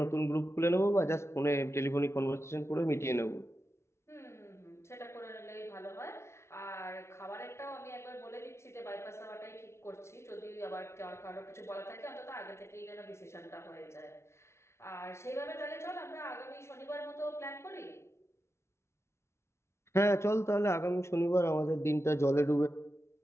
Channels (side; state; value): right; late; 0.13 ms